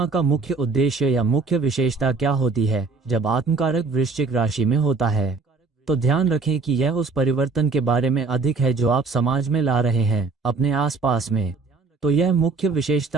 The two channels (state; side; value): quieter; left; 4.2 dB